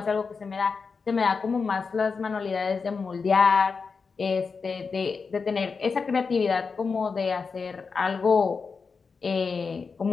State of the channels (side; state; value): right; quieter; 5.0 dB